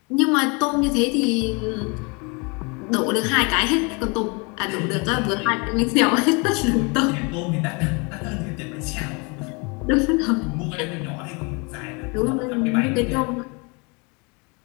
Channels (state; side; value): quieter; right; 31.0 dB